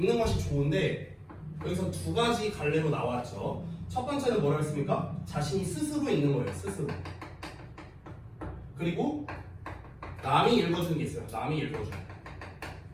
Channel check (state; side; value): identical; both; correlation 1.00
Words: 것이 좋은데 여기서 두 가지 갈래로 나왔죠. 첫 번째는 뭐라고 했습니까? 자신이 스스로 읽는 거예요. 스스로. 그리고 남이 읽어주는 게 있어요. 남이 읽어주는 거.